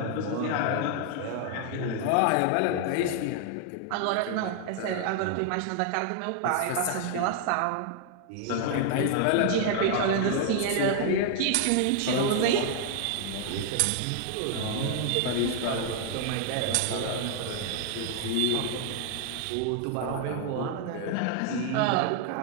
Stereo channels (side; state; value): both; different; correlation 0.00